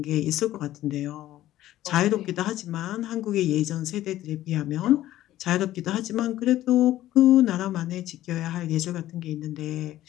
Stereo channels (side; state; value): right; quieter; 14.1 dB